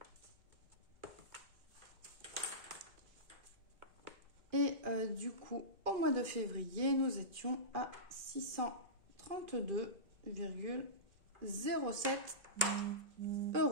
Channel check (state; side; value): late; left; 2.4 ms